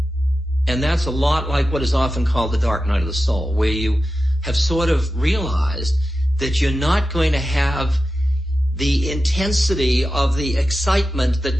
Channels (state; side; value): normal; both; correlation 0.92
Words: And that's a lot like what is often called the dark night of the soul, where you have sort of realized that you're not going to have the intensity of the excitement that